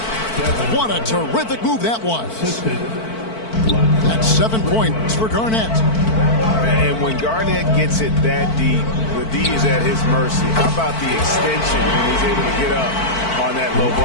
What a terrific move that was. That's 7 points for Garnett. And when Garnett gets it that deep, the D is at his mercy. How about the extension when he's able to get up on that low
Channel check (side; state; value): right; late; 4.5 ms